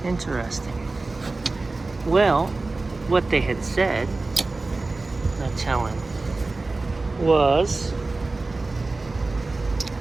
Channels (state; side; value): quieter; left; 3.4 dB